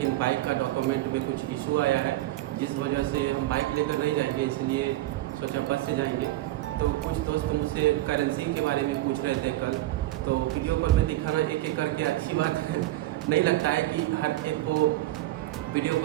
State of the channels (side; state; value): left; quieter; 16.5 dB